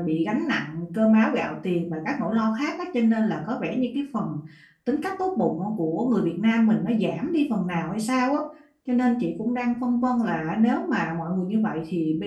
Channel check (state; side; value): identical; both; correlation 1.00